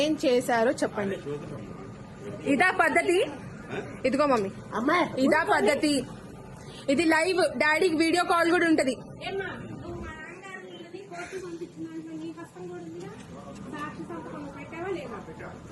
చేశారో చెప్పండి. ఇదా పద్ధతి? ఇదిగో మమ్మీ, ఇదా పద్ధతి? ఇది లైవ్, డాడీకి వీడియో కాల్ కూడా ఉంటది.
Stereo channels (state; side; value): identical; both; correlation 1.00